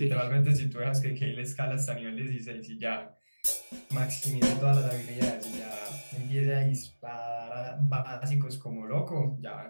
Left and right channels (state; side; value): inverted; both; correlation -1.00